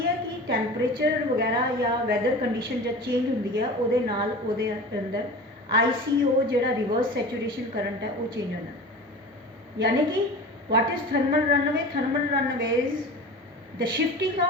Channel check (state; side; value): normal; both; correlation 0.35